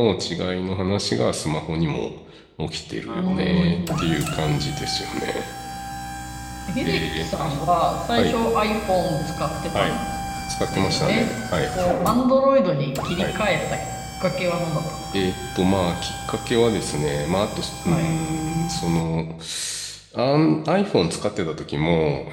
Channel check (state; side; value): identical; both; correlation 1.00